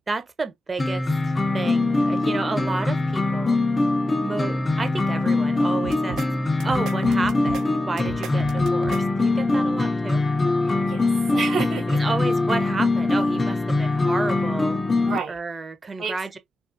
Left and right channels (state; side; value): normal; both; correlation 0.92